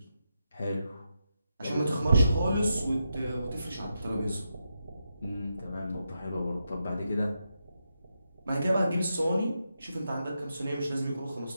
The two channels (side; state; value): both; inverted; correlation -0.85